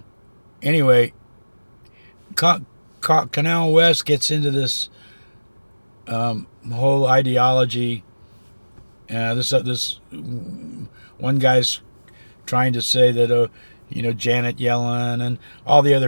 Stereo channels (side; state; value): both; inverted; correlation -1.00